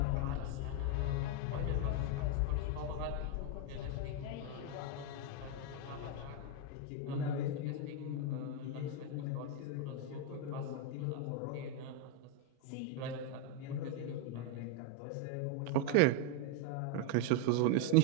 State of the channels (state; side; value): different; both; correlation 0.01